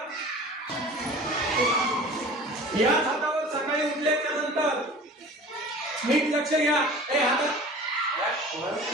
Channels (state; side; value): normal; both; correlation 0.41